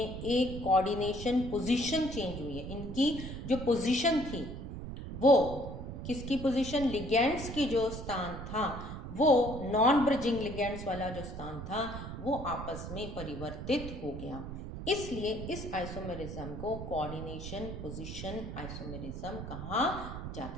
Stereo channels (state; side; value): noise; right; rumble, 8 dB below the sound